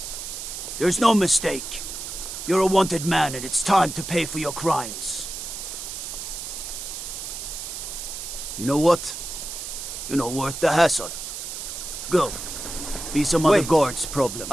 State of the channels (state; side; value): noise; right; hiss, 7 dB below the sound